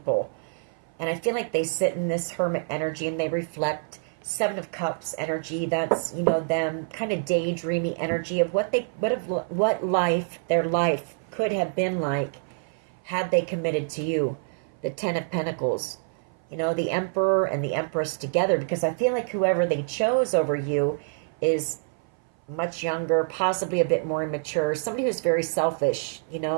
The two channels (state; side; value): silent; left; 57 dB below the other